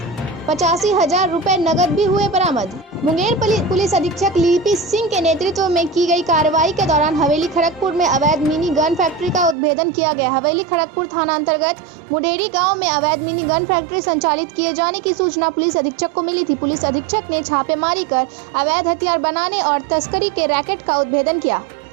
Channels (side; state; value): left; drops out; at 9.6 s